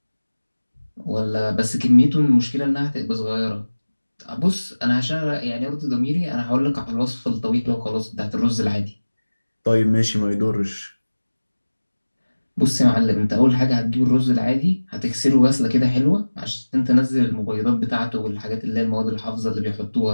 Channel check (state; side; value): inverted; both; correlation -1.00